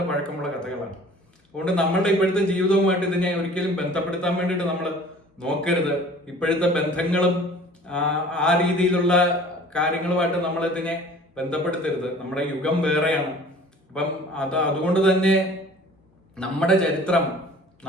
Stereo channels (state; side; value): normal; both; correlation 0.48